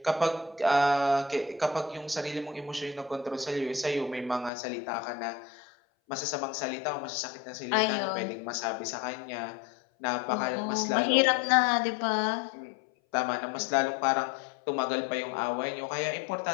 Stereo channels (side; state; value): right; drops out; at 4.5 s